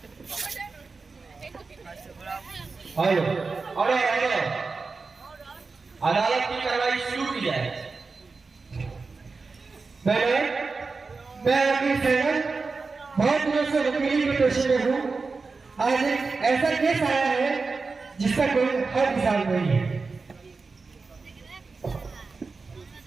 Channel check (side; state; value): left; quieter; 4.3 dB